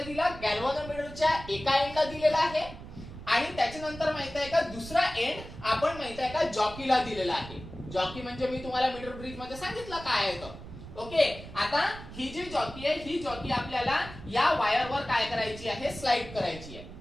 दिला, गॅल्व्हनोमीटरच्या एका एंडला दिलेला आहे आणि त्याच्यानंतर माहित आहे का दुसरा एंड आपण माहित आहे का जॉकीला दिलेला आहे. जॉकी म्हणजे मी तुम्हाला मीटर ब्रिज मध्ये सांगितलं काय आहे तर. ओके, आता ही जी जॉकी आहे ही जॉकी आपल्याला या वायरवर काय करायची आहे, स्लाइड करायची आहे.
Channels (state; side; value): noise; right; rumble, 13 dB below the sound